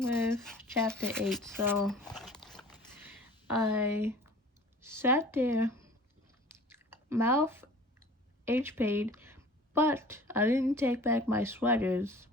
with chapter 8. So I sat there, mouth H-paid, but I didn't take back my sweaters.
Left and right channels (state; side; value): normal; both; correlation 0.45